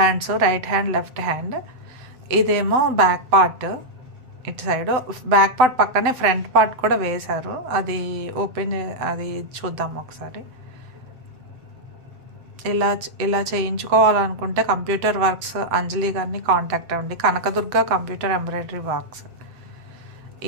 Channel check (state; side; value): late; left; 7.9 ms